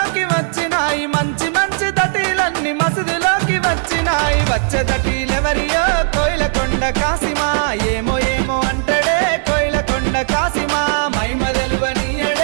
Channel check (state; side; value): silent; left; 68 dB below the other